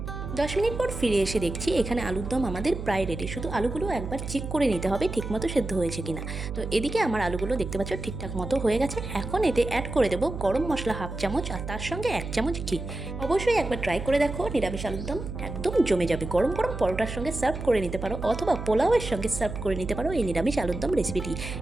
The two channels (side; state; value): right; noise; hum, 7 dB below the sound